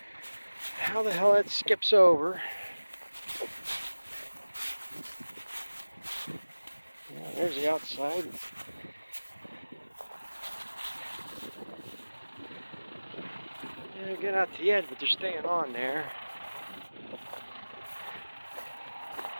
How the hell that skips over? Yeah, there's the outside. Yeah, get out to the edge, but they're staying on there.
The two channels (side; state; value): both; inverted; correlation -1.00